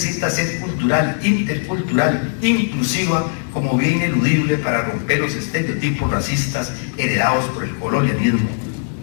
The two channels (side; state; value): right; silent; 66 dB below the other